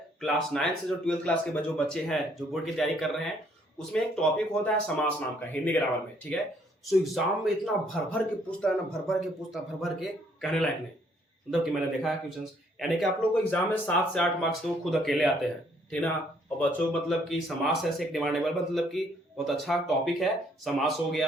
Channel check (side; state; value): both; normal; correlation 0.66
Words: क्लास 9 से जो 12th क्लास के जो बच्चे हैं जो बोर्ड की तैयारी कर रहे हैं, उसमें एक टॉपिक होता है समास नाम का हिंदी ग्रामर में। ठीक है, सो एग्जाम में इतना भर भर के पूछता है ना, भर भर के पूछता, भर भर के कहने लायक नहीं। मतलब कि मैंने देखा है क्वेश्चंस, यानी कि आप लोग को एग्जाम में 7 से 8 मार्क्स तो खुद अकेले आते हैं, ठीक ना। और बच्चों मतलब कि समास ऐसे एक डिमांडेबल, मतलब कि बहुत अच्छा टॉपिक है। समास हो